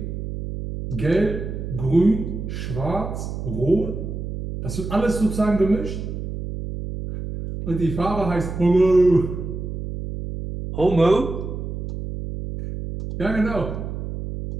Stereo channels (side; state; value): right; noise; hum, 6 dB below the sound